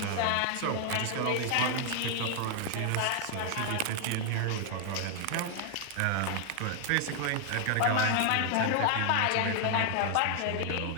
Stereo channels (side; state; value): both; different; correlation 0.00